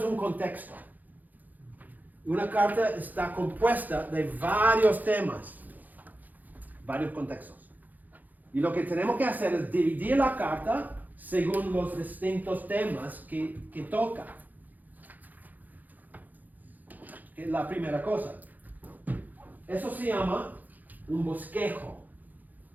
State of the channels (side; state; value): left; late; 0.083 ms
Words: un contexto. Una carta está compuesta de varios temas, varios contextos. Y lo que tenemos que hacer es dividir la carta según los distintos temas que toca. Es la primera cosa. Eso se llama un bosquejo.